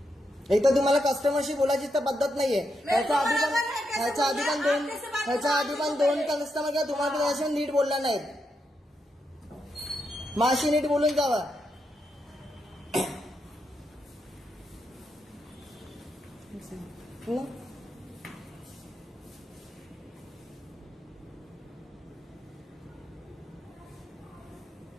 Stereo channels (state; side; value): normal; both; correlation 0.83